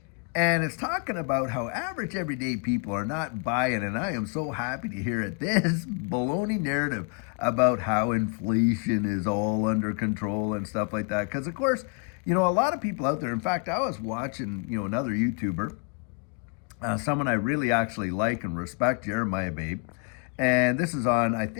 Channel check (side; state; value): right; quieter; 35.5 dB